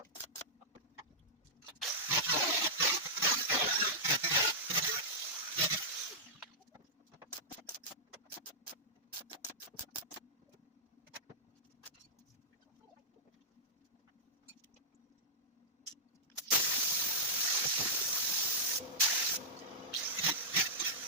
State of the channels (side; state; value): both; normal; correlation -0.11